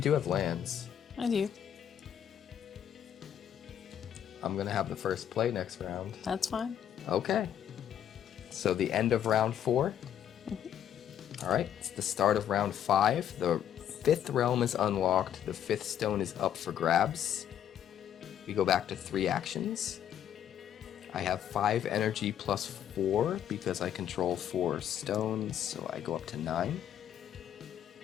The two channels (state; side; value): quieter; right; 9.8 dB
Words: have lands. I do. I'm going to have the first play next round. That's fine. Okay. So the end of round 4. All right, it's the start of round 5. The 5th realm is unlocked. The 5th stone is up for grabs. We go back to 3 actions. I have 5 energy plus 4 because I control 4 stones, so I go up to 9.